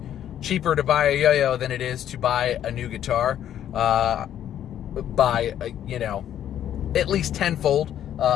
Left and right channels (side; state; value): right; quieter; 10.7 dB